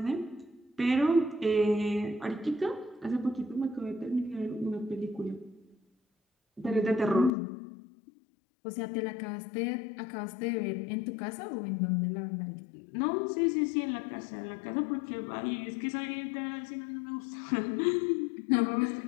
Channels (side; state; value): right; drops out; at 7.3 s